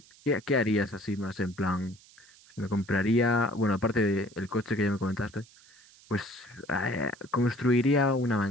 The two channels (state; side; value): noise; right; hiss, 25 dB below the sound